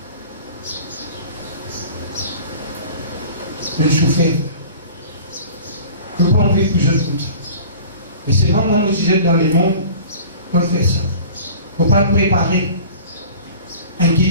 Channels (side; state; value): both; inverted; correlation -0.42